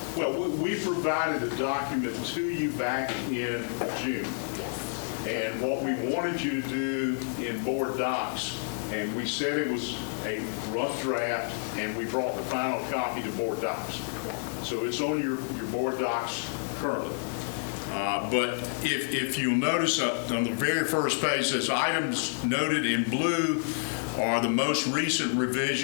Well, we provided a document to you back in June. Yes. And what we wanted you to do in board docs, and we said it was a rough draft, and we brought the final copy to board docs. Yeah. So it's on your board docs currently. But if you'll notice on the very first page, it says items noted in blue are the most recent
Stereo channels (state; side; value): silent; right; digital silence